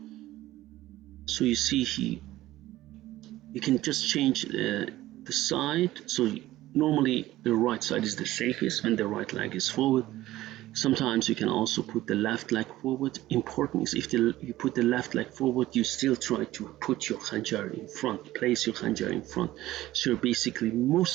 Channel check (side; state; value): left; quieter; 15.9 dB